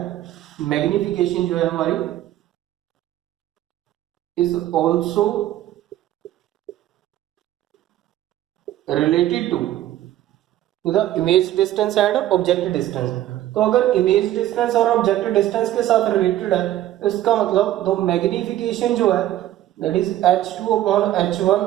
मैग्निफिकेशन जो है हमारी is also related to the image distance and object distance. तो अगर इमेज डिस्टेंस और ऑब्जेक्ट डिस्टेंस के साथ रिलेटेड है तो इसका मतलब तो मैग्निफिकेशन जो है that is h2 upon h1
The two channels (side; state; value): left; quieter; 13.5 dB